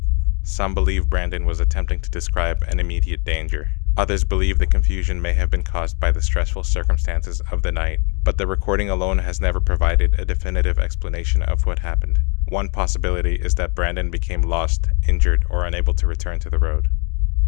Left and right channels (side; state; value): right; quieter; 35.0 dB